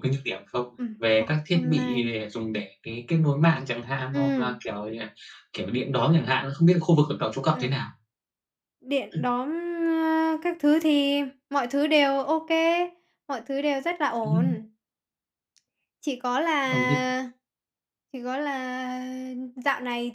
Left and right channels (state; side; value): identical; both; correlation 1.00